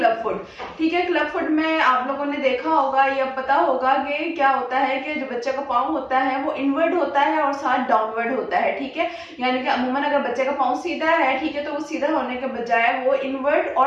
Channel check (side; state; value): both; identical; correlation 1.00